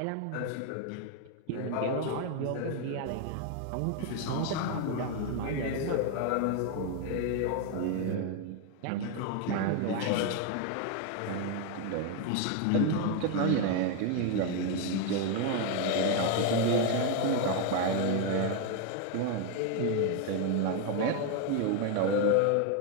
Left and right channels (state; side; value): different; both; correlation 0.01